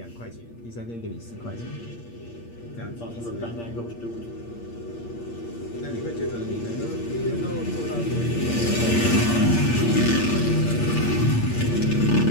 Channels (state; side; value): late; right; 8.6 ms